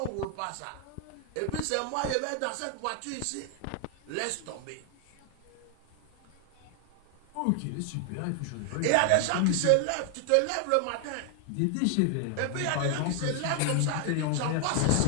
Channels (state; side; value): different; both; correlation 0.00